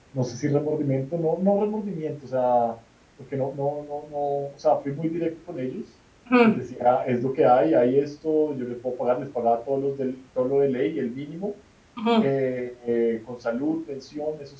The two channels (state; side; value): identical; both; correlation 1.00